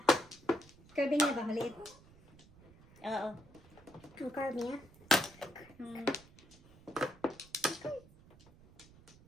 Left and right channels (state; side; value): noise; right; rumble, 24 dB below the sound